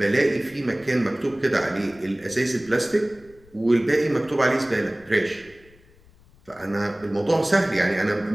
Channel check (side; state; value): left; noise; rumble, 27 dB below the sound